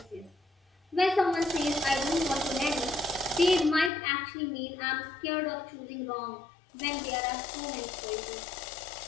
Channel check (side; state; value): right; drops out; at 3.9 s